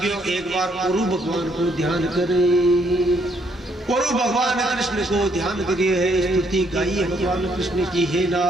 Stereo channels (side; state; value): both; normal; correlation 0.70